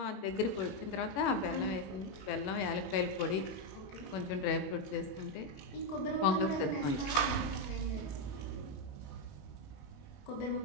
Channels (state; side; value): late; right; 21 ms